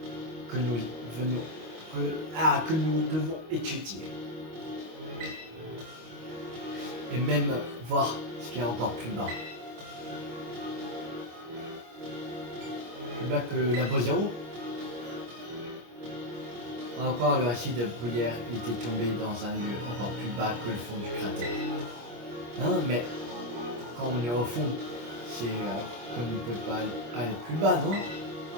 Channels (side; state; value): left; late; 25 ms